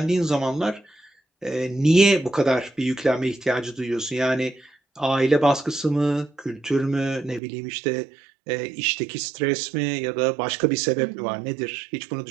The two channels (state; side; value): drops out; left; at 7.4 s